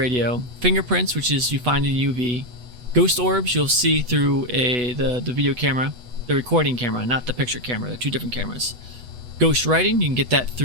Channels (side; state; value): left; late; 8.1 ms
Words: fingerprints, which is you find in UV, ghost orbs you'll see through the video camera, the recording camera, not the picture camera. They're 2 different cameras. Ghost writing, you can get that